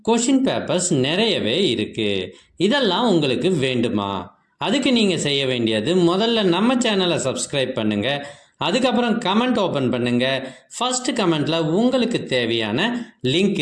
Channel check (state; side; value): identical; both; correlation 1.00